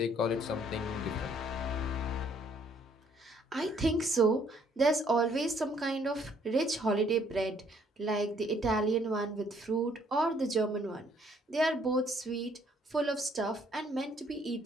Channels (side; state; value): both; normal; correlation 0.64